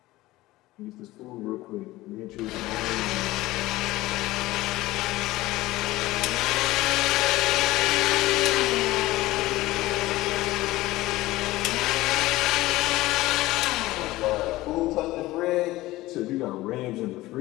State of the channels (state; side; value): quieter; right; 17.9 dB